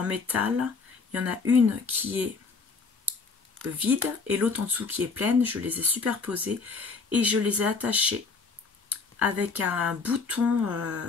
métal. Il y en a une qui est vide et l'autre en dessous qui est pleine. Je les ai superposées et je les ai attachées avec un bouton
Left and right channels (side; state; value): right; quieter; 4.6 dB